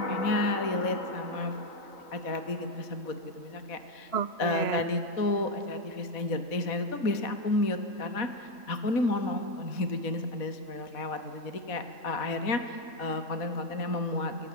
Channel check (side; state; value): right; late; 4.1 ms